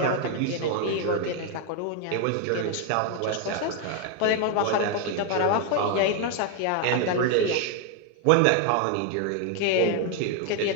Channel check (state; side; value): different; both; correlation 0.00